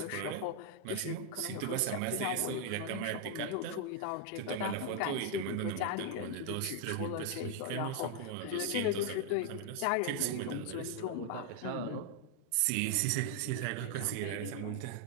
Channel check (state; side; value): different; both; correlation 0.00